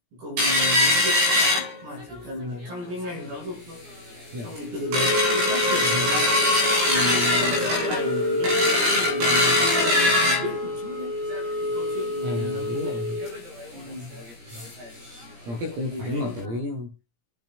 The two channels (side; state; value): left; late; 17 ms